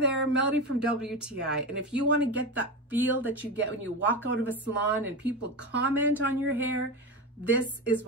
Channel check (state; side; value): normal; both; correlation 0.19